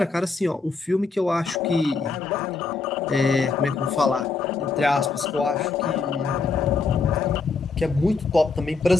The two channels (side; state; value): right; quieter; 4.4 dB